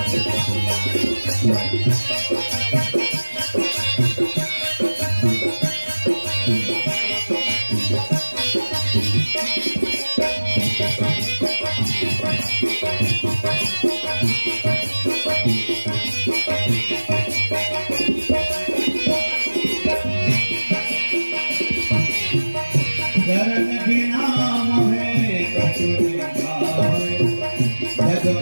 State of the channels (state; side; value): inverted; both; correlation -1.00